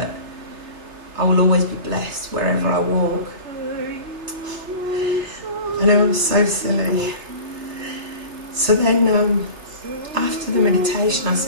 I will always be blessed wherever I walk. I know I'm so silly. So then after the meditation I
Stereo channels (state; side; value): late; left; 3.3 ms